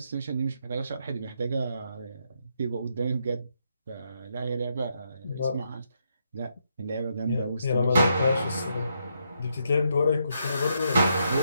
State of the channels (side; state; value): both; inverted; correlation -0.78